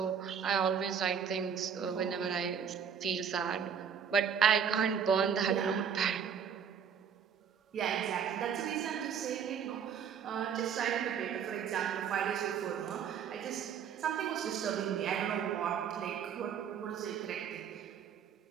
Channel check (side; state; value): left; quieter; 7.6 dB